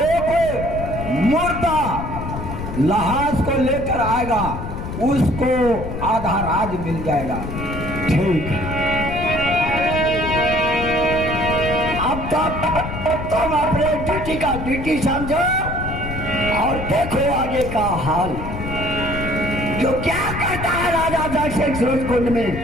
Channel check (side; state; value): left; noise; rumble, 7 dB below the sound